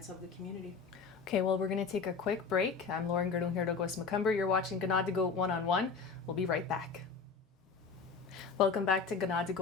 of the community. Okay, well, we're going to take a quick break. I'm Lauren Gerdung-Herdogos-Macumber. You're watching Ganadigo One-on-One. We'll be right back. Welcome back to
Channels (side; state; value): right; quieter; 5.1 dB